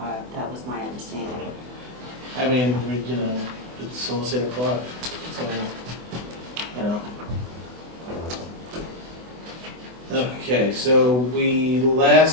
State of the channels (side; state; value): left; late; 24 ms